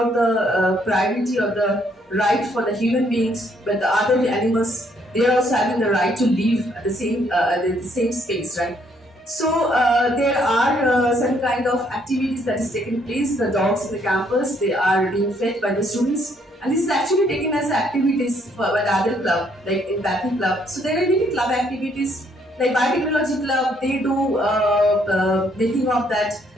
the priority or the right for the human beings, but the other animals, they are also having the right to live at the same space, right? So there are some kind of activities that is taking place. The dogs in the campus, they are being fed by the students, and this is actually taken as activities by the other club, like empathy club. So there are many club activities, like biotechnology club. They do making of that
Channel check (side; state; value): both; normal; correlation 0.69